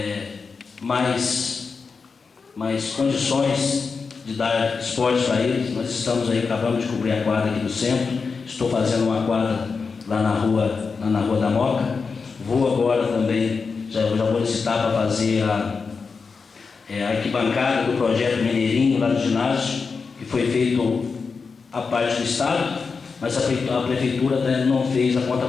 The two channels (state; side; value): quieter; right; 5.0 dB